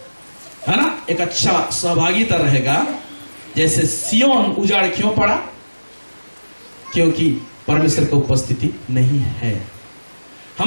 है ना, एक अच्छा सहभागिता रहेगा। जैसे सियोन उजाड़ क्यों पड़ा? क्योंकि परमेश्वर की उपस्थिति नहीं है।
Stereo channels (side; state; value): both; inverted; correlation -1.00